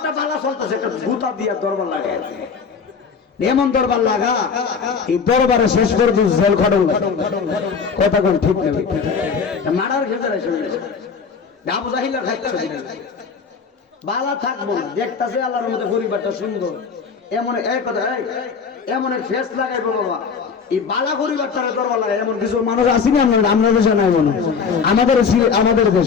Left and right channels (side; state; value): right; quieter; 5.8 dB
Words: বালা চলতেছে, একটা গুতা দিয়া দরবার লাগায়, এমন দরবার লাগা এই দরবারে শেষ করে জেল খটল, কথা কোন ঠিক না? মারার ভেতরে আবু জাহিলা খাইছে বালা থাকবো না, দেখতেছে আল্লাহর মধ্যে পরিবারটা সুন্দর, এমন এক কথা এমন এক ফেস লাগাইবো বাবা, এই বালা পরিবারটা দরবার লাগায়। এমন কিছু মানুষ আসেনি আপনার দেশে নাই মনে, আমাদের